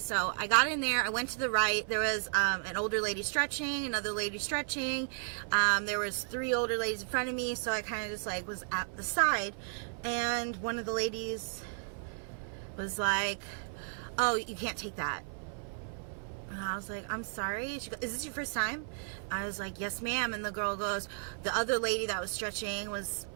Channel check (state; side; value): silent; left; 55 dB below the other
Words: I got in there, I went to the right, there was an older lady stretching, another lady stretching, there was 3 older ladies in front of me, so I kind of just like was at the side, and one of the ladies was like, oh, you can't take that. And I was like, I'm sorry. She goes, is this your first time? I was like, yes ma'am. And the girl goes, the other lady that was stretching was